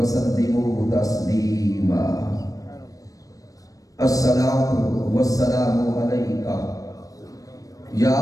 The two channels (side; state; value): right; late; 0.17 ms